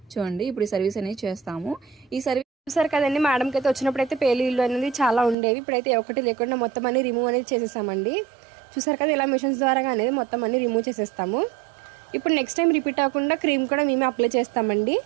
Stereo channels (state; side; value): drops out; left; at 5.4 s